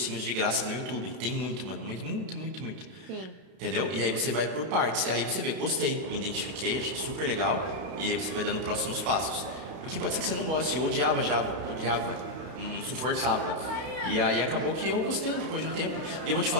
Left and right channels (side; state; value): left; late; 32 ms